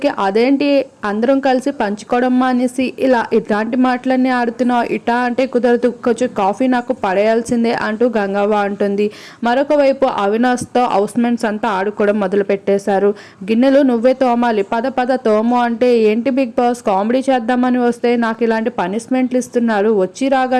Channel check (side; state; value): both; identical; correlation 1.00